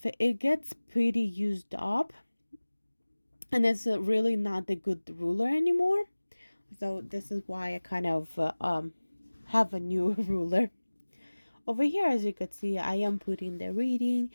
it gets pretty used up, and it's really not a good ruler anymore. So this is why I kind of have a new ruler. Over here, as you could see, I am putting the read,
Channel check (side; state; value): both; inverted; correlation -1.00